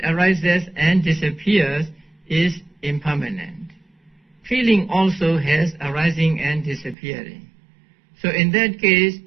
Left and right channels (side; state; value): left; drops out; at 7.0 s